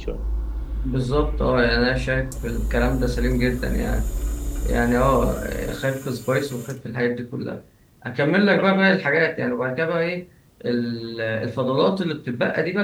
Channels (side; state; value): both; identical; correlation 1.00